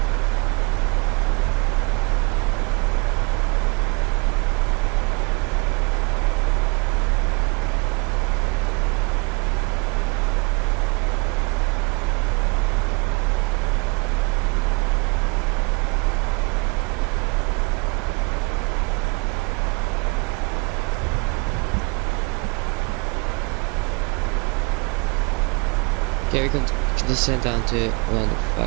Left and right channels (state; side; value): quieter; left; 31.0 dB